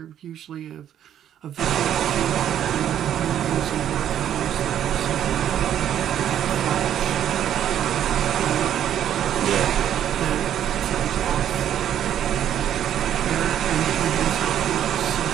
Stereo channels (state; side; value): quieter; left; 10.4 dB